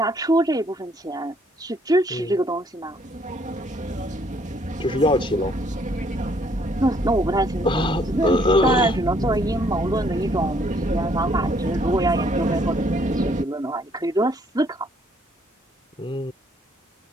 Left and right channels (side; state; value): both; normal; correlation 0.66